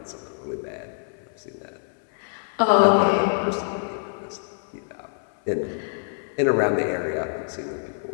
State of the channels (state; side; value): silent; right; 61 dB below the other